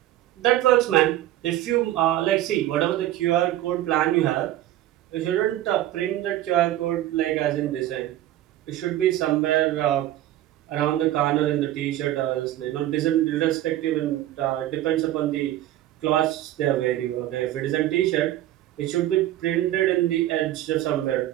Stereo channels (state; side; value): quieter; left; 13.8 dB